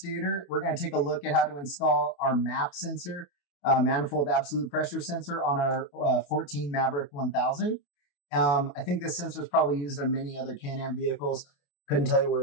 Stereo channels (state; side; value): late; right; 28 ms